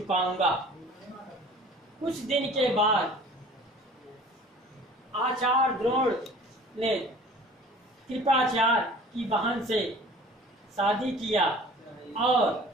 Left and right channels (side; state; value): both; normal; correlation 0.46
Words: कुछ दिन के बाद आचार्य द्रोण ने कृपाचार्य की बहन से शादी किया और